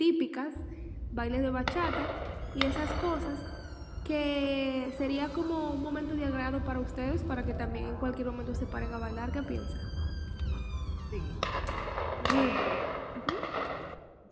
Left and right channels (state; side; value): identical; both; correlation 1.00